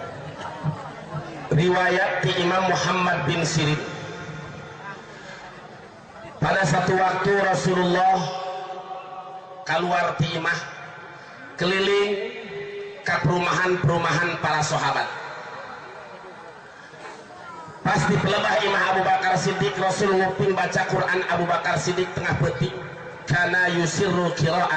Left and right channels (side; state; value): both; identical; correlation 1.00